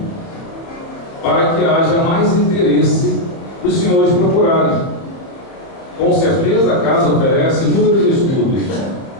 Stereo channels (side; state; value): right; late; 30 ms